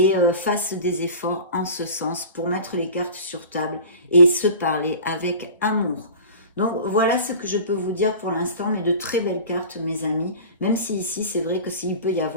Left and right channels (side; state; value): both; inverted; correlation -0.38